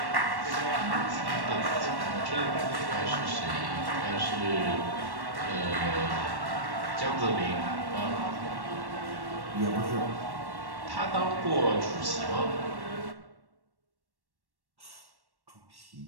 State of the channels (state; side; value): late; left; 1.1 ms